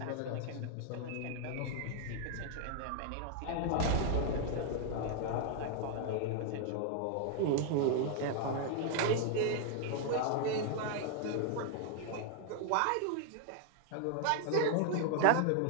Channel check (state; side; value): different; both; correlation 0.00